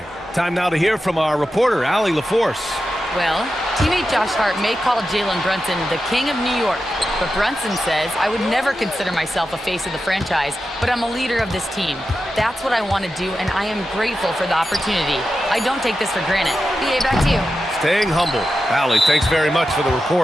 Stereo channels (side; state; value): both; normal; correlation 0.91